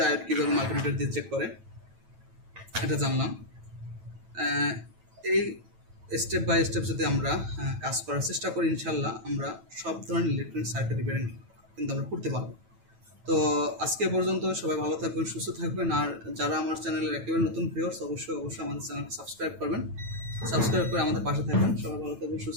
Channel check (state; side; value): late; left; 9.1 ms